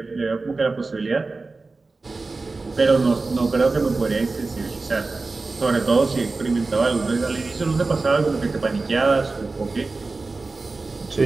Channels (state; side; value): quieter; left; 3.7 dB